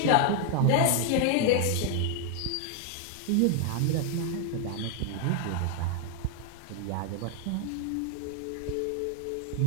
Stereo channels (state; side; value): different; both; correlation 0.01